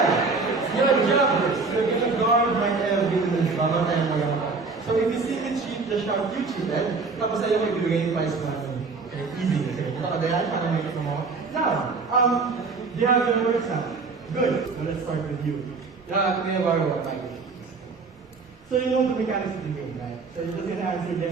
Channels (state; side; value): quieter; left; 4.3 dB